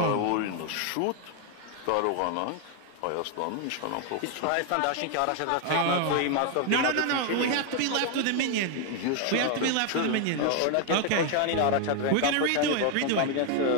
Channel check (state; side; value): different; both; correlation 0.00